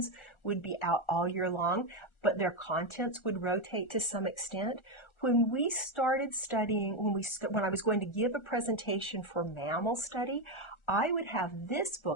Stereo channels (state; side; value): late; right; 1.4 ms